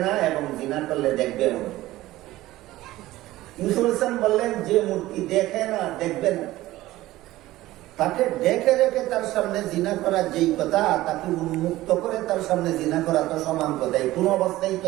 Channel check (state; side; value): quieter; left; 16.6 dB